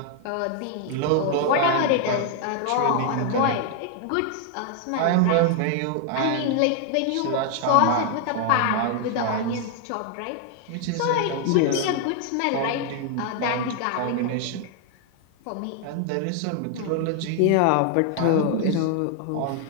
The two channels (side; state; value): both; different; correlation 0.00